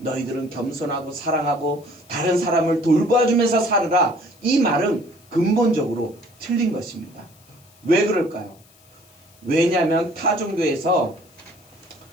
겸손하고 사랑하고 다른 사람을 돌봐주면서 살으라, 이 말은 근본적으로 틀린 것입니다. 왜 그럴까요? 왜냐하면 타 종교에서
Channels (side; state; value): left; noise; hiss, 28 dB below the sound